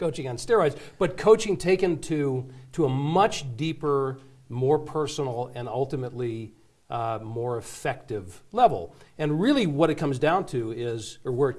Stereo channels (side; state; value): both; identical; correlation 1.00